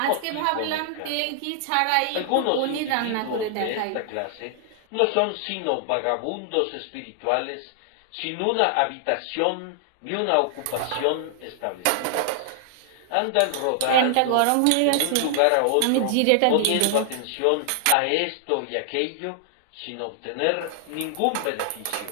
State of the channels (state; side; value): different; both; correlation 0.00